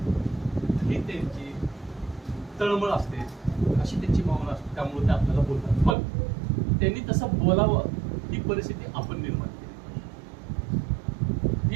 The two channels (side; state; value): left; drops out; at 6.0 s